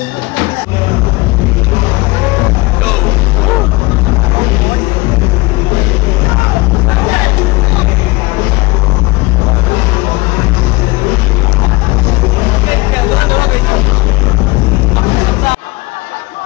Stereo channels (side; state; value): right; quieter; 22.3 dB